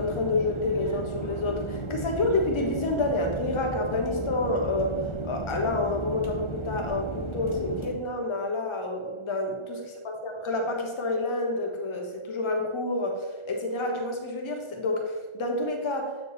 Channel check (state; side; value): late; right; 1.4 ms